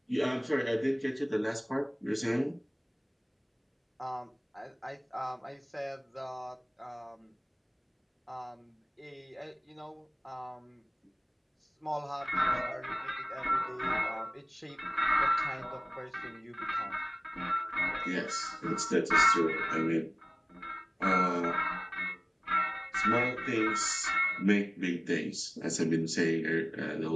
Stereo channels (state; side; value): identical; both; correlation 1.00